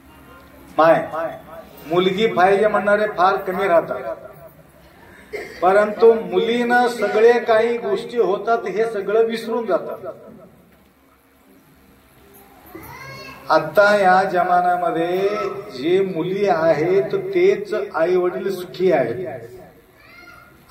मुलगी पाहिजे म्हणणारे फार कमी राहतात. परंतु मुलीनं सगळे काही गोष्टी होतात हे सगळं विसरून जातात. आता या जमान्यामध्ये जे मुली आहेत तेच आई वडील सुखी आहेत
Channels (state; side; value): identical; both; correlation 1.00